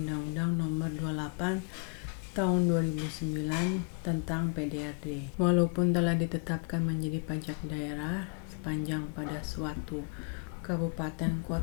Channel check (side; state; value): right; quieter; 33.7 dB